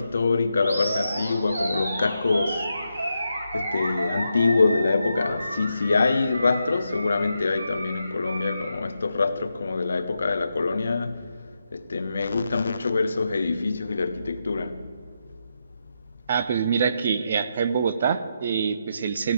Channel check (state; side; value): inverted; both; correlation -0.84